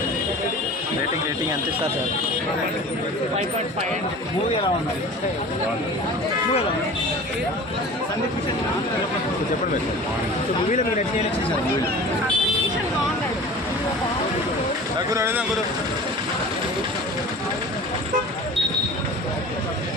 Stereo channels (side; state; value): both; normal; correlation 0.40